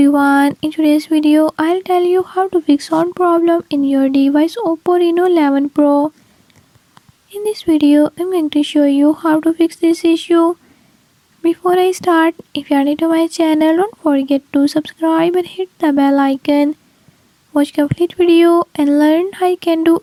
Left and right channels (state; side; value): identical; both; correlation 1.00